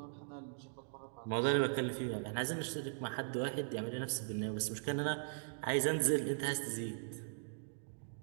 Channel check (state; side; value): silent; left; digital silence